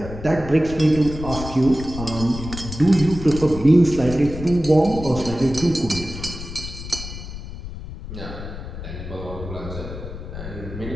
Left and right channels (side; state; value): left; noise; rumble, 10 dB below the sound